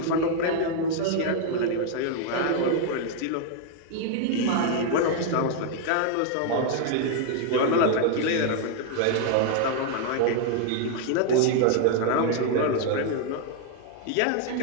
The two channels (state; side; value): different; both; correlation 0.00